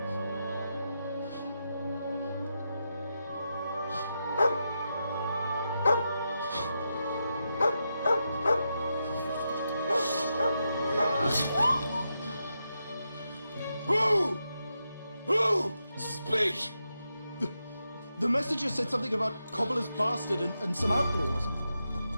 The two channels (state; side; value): inverted; both; correlation -0.86